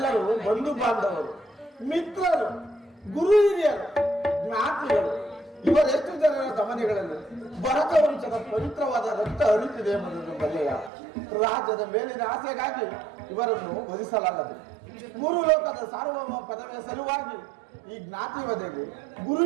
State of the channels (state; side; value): drops out; left; at 10.9 s